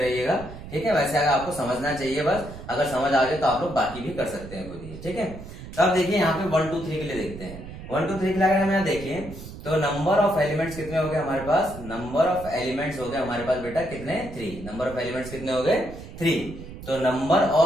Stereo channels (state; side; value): noise; right; rumble, 13 dB below the sound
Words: ठीक है, वैसे अगर आपको समझना चाहिए बस, अगर समझ आ जाए तो आप लोग बाकी भी कर सकते हैं खुद ही। ठीक है, तो अब देखिए यहाँ पे 1 2 3 के लिए देखते हैं। 1 2 3 के लिए अगर हम यहाँ देखिए तो नंबर ऑफ एलिमेंट्स कितने हो गए हमारे पास? नंबर ऑफ एलिमेंट्स हो गए हमारे पास बेटा कितने? 3। नंबर ऑफ एलिमेंट्स कितने हो गए? 3। तो नंबर